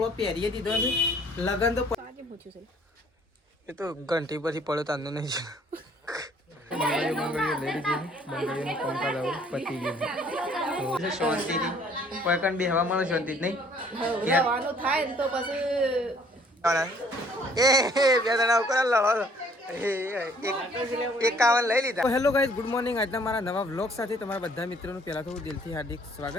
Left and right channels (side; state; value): both; normal; correlation 0.59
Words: પહેરીએ દીધો છે લગન તો એ તો ઘંટી પછી પડ્યો તાંદો નહીં છે બંગડીઓ લઈ લીધી બંગડીઓનું કામકાજ આવું પતી ગયું તો શાંતિથી કોઈ કણ બેહવા મળે શાંતિ જ નહીં થાય ને તો પછી એ બે જણા ઉપર લડો એકાવન લઈ લીધા. Hello guys, good morning. આજના મારા નવા વ્લોગ સાથે તમારા બધા મિત્રોનું પહેલાં તો હું દિલથી હાર્દિક